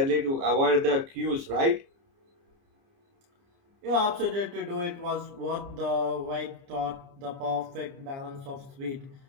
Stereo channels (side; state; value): left; late; 29 ms